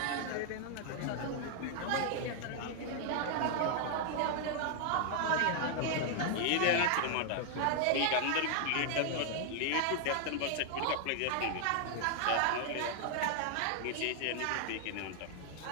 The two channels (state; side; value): different; both; correlation 0.00